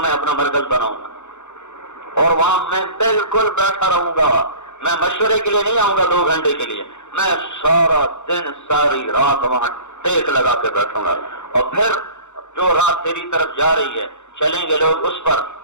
میں اپنا مرکز بناؤں گا، اور وہاں میں بالکل بیٹھا رہوں گا۔ میں مشورے کے لیے نہیں آؤں گا 2 گھنٹے کے لیے، میں سارا دن ساری رات وہاں ٹیک لگا کے بیٹھوں گا، اور پھر جو رات تیری طرف جا رہی ہے چلیں گے لوگ اس پر،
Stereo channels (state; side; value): late; right; 0.83 ms